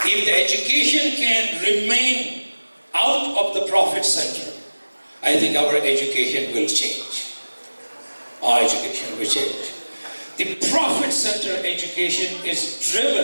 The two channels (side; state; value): both; inverted; correlation -1.00